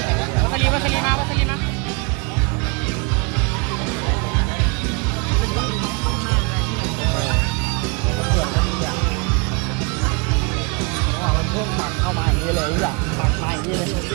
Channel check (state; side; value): quieter; left; 31.4 dB